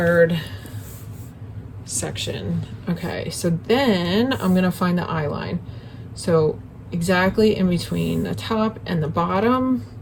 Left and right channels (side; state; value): both; identical; correlation 1.00